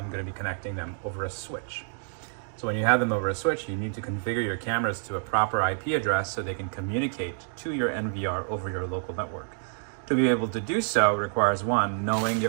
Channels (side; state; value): left; silent; digital silence